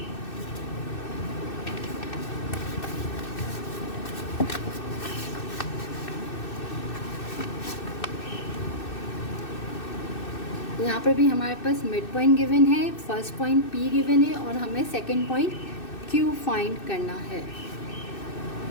यहाँ पर भी हमारे पास मिड पॉइंट गिवन है, फर्स्ट पॉइंट P गिवन है, और हमें सेकंड पॉइंट Q फाइंड करना है।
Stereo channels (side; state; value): right; late; 2.6 ms